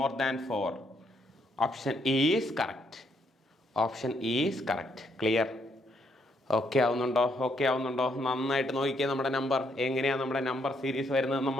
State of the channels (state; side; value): normal; both; correlation 0.74